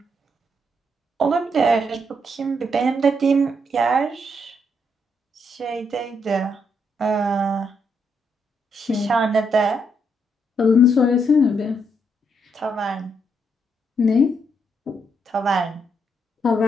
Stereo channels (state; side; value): normal; both; correlation 0.77